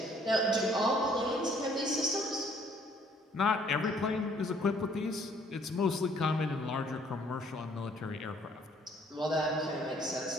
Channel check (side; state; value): both; normal; correlation 0.61